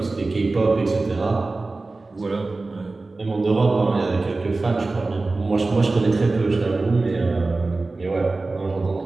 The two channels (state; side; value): quieter; left; 3.4 dB